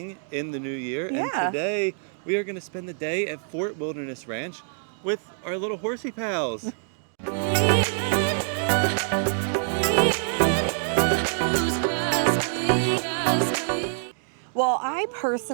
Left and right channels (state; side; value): silent; left; digital silence